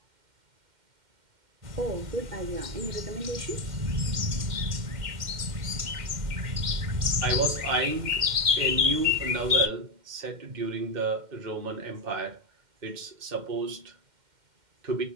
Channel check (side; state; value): left; late; 2.1 ms